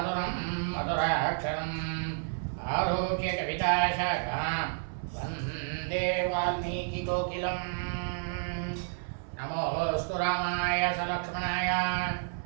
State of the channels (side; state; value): left; silent; 57 dB below the other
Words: மதுராட்சரம் ஆரோக்கிய கவிதாசாகாம் வந்தே வால்மீகி கோகிலம். நமோஸ்து ராமாய சலக்ஷ்மணாய